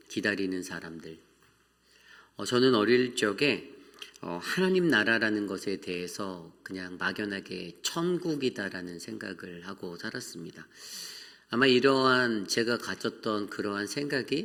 기다리는 사람들. 저는 어릴 적에 하나님 나라라는 것에 대해서 그냥 막연하게 천국이다라는 생각을 하고 살았습니다. 아마 이러한 제가 가졌던 그러한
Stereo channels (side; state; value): both; identical; correlation 1.00